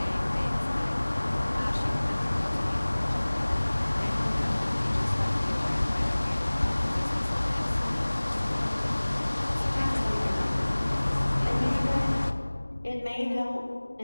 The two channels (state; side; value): inverted; both; correlation -1.00